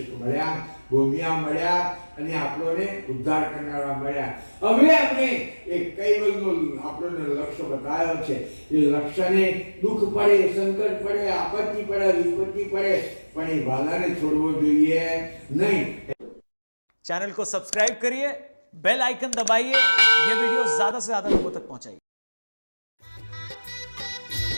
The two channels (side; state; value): both; inverted; correlation -1.00